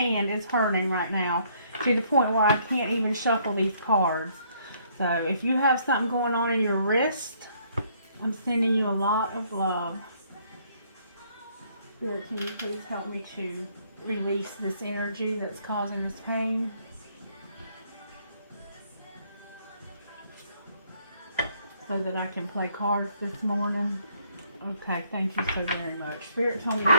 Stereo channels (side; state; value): both; inverted; correlation -0.66